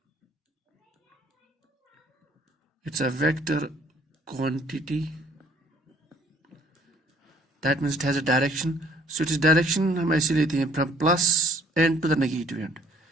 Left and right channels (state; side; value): normal; both; correlation 0.59